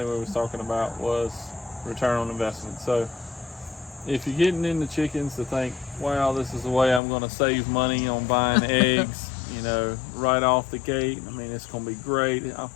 we was talking about was return on investment. So if you're getting into chickens to think, wow, this is the way I'm going to save money on buying eggs, right off the gate. I mean, it's going to be great.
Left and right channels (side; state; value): right; drops out; at 7.0 s